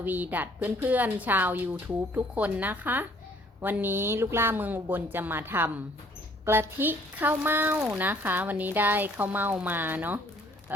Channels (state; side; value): normal; both; correlation 0.60